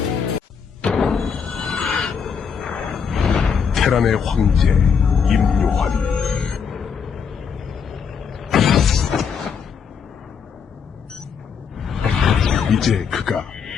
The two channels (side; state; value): right; quieter; 6.5 dB